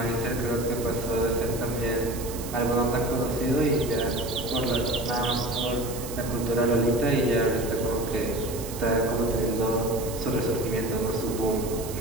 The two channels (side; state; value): right; noise; hiss, 12 dB below the sound